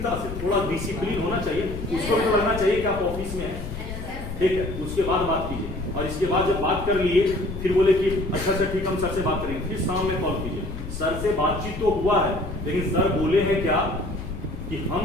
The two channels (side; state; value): left; noise; rumble, 8 dB below the sound